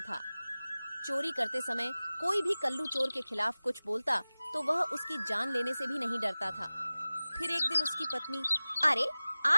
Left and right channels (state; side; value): inverted; both; correlation -0.98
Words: चोरी करते समय कोई भी कल्लू चोर के खिलाफ कुछ बोलता तो वह उसकी जान लेने से भी नहीं डरता था। फिर एक दिन उसकी पत्नी, अरे